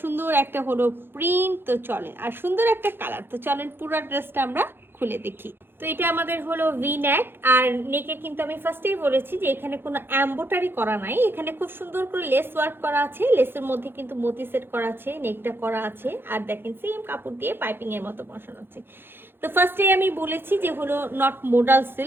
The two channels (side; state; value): left; late; 0.10 ms